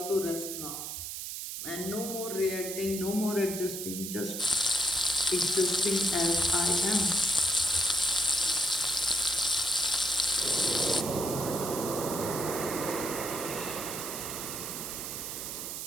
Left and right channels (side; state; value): right; noise; hiss, 6 dB below the sound